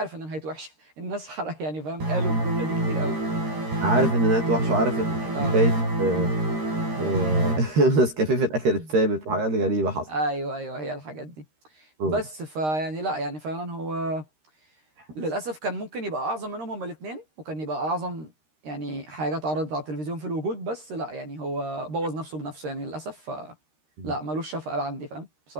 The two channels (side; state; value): left; late; 13 ms